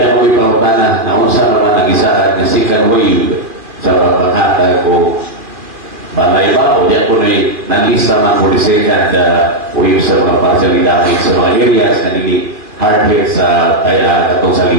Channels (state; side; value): late; left; 2.4 ms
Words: ako ipautan na unsa naman nag-isaan na second wave sa paghatag ko balay ba o diyan ko nalista man for the second wave sa mga partial damage sa mga areas na nili hard hit sa katong